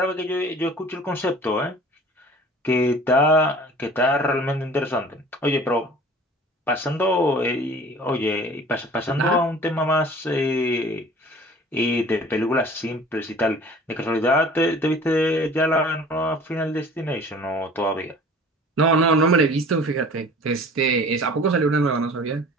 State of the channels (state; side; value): normal; both; correlation 0.46